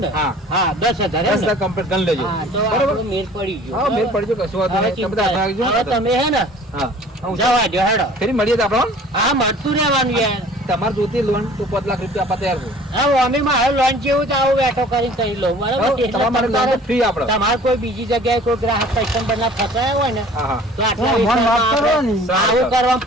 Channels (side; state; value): both; normal; correlation 0.49